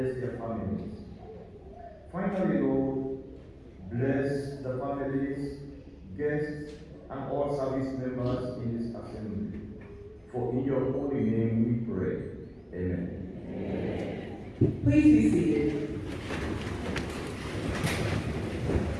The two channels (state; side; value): identical; both; correlation 1.00